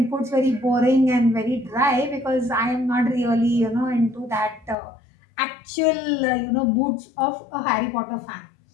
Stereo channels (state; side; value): drops out; right; at 4.8 s